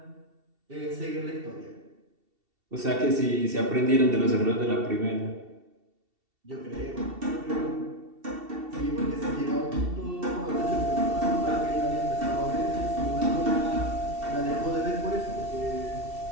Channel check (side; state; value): left; late; 2.7 ms